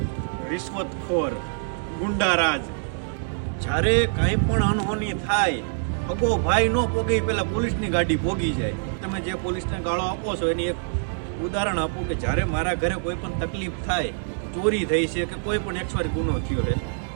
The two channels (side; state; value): left; silent; 62 dB below the other